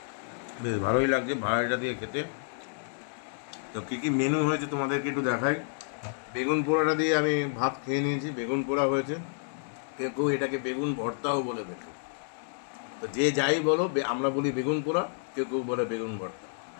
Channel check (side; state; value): right; silent; digital silence